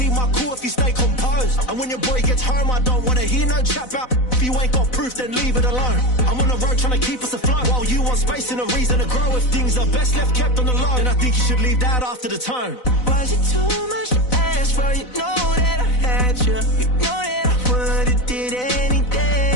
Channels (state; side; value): late; right; 4.0 ms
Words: my cool if you stay composed. And when your boy gets home, I don't wanna hear no chat about. If you ain't got proof, then leave it alone. I'm on the road trying to keep us afloat. While you want space and a reason to grow. If things are best left kept on the low, then I think you should leave that after the tone. Was it too much to ask for? You know that I had you. You know that I would've did